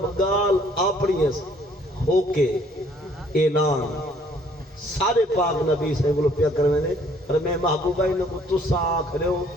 گال اپنی ہو کے اعلان سارے پاک نبی سے بلو پیا کرنے نے اور میں محبوبہ انہوں کو تسا آنکھ رہے ہو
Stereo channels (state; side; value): normal; both; correlation 0.61